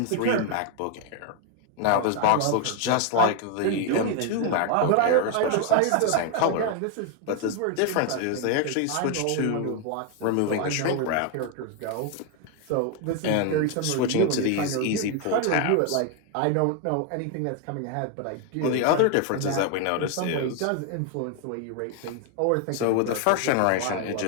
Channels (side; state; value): both; different; correlation 0.00